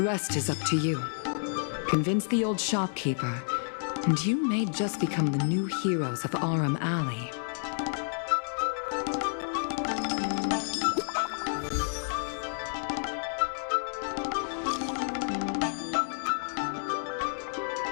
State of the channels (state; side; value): silent; right; digital silence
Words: rest is up to you. Convince the old shopkeeper, and you may just become the new heroes of Arum Alley.